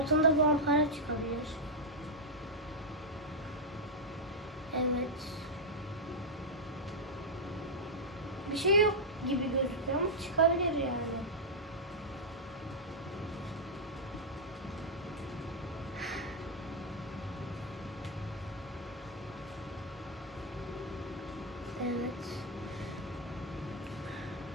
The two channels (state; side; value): normal; both; correlation -0.04